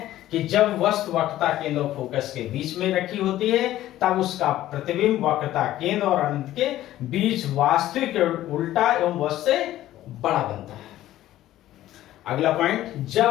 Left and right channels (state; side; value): quieter; right; 14.1 dB